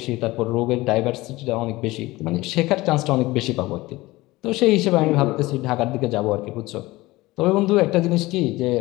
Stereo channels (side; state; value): right; quieter; 19.7 dB